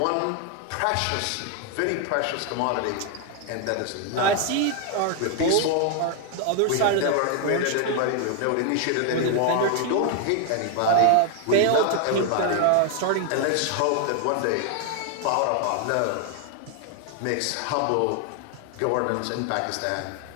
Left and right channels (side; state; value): both; different; correlation 0.00